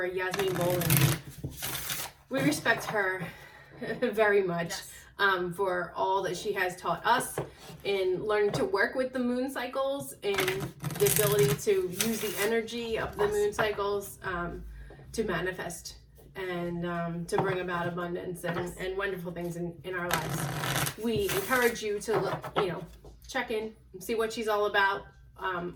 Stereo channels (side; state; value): both; identical; correlation 1.00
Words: Yasmin Boland. We respect her very much for all that she has taught us in learning to work with the moon cycles and the ability to use the energy of the moon cycles to manifest and to bring about abundance and wonderful things in our lives. We encourage you to check in and see what she's all about,